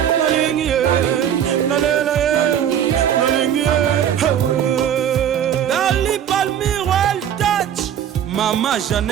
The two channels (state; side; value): quieter; left; 9.5 dB